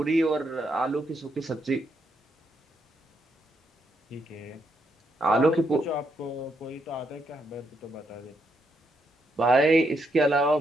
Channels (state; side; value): normal; both; correlation 0.78